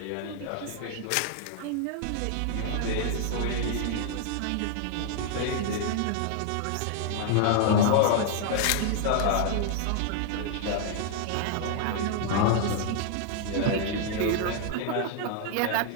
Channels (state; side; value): different; both; correlation 0.00